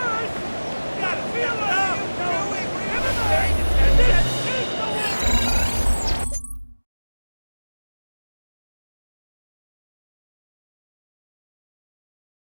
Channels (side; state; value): both; inverted; correlation -1.00